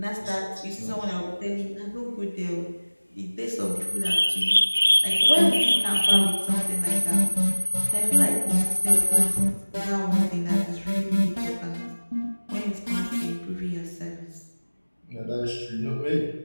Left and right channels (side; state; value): both; inverted; correlation -1.00